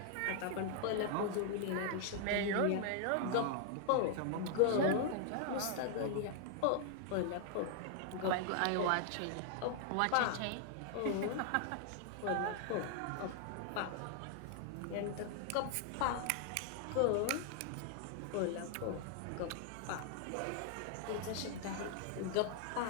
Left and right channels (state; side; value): different; both; correlation 0.00